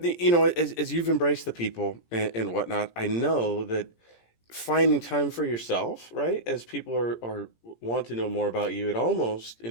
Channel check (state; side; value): late; right; 17 ms